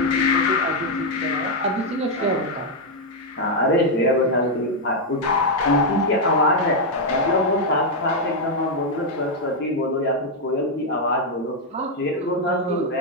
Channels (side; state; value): both; normal; correlation 0.00